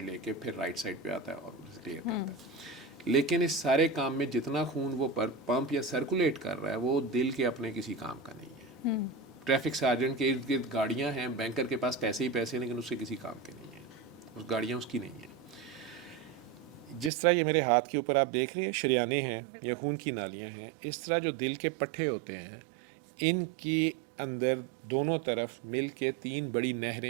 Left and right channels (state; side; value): drops out; left; at 17.1 s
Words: लेके फिर राइट साइड पे आता है और उसे क्लियर करता है। लेकिन इस सारे काम में जितना खून वो पर पंप या सर्कुलेट कर रहा है, वो दिल के अपने किसी काम का नहीं है। ट्रैफिक सार्जेंट के इर्द गिर्द गाड़ियाँ हैं, बैंकर के पास पैसे ही पैसे, लेकिन उससे किसी काम के नहीं है, उस गाड़ियाँ उसकी नहीं है। जिस तरह ये मेरे हाथ के ऊपर आप देख रहे हैं शरियाने हैं या खून की नालियाँ हैं, इस तरह जो दिल के पट्टे होते हैं, इनकी अंदर दोनों तरफ मिल के 3 बड़ी